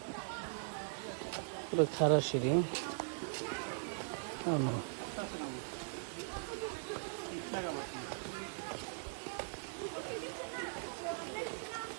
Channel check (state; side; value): silent; left; 51 dB below the other